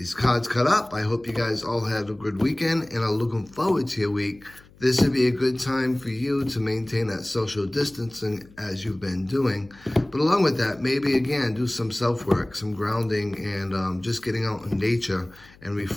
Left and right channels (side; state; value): left; noise; hum, 25 dB below the sound